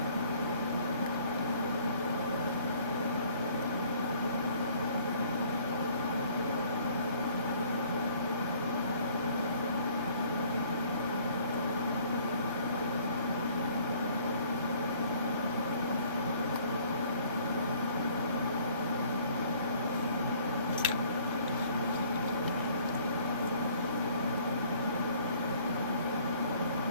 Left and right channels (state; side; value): inverted; both; correlation -0.57